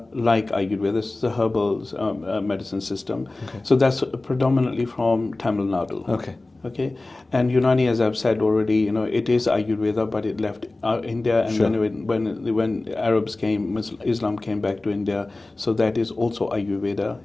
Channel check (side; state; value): right; quieter; 3.0 dB